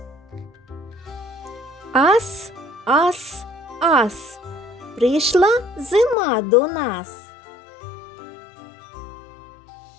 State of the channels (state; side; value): drops out; right; at 6.2 s